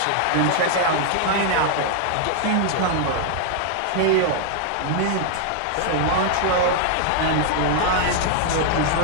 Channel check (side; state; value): both; different; correlation 0.00